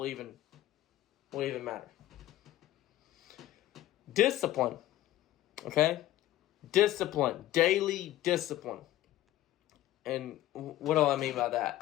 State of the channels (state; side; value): quieter; right; 14.4 dB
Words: even matter. Discipline, okay? Discipline, daily discipline. And what do I mean by